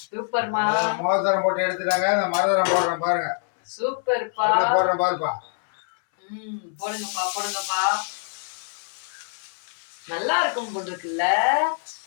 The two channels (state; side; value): silent; right; 62 dB below the other